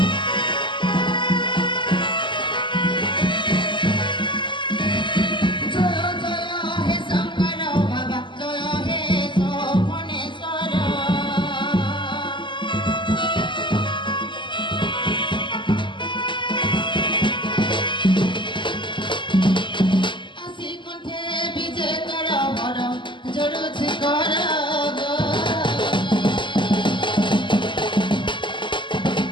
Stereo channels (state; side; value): late; right; 0.23 ms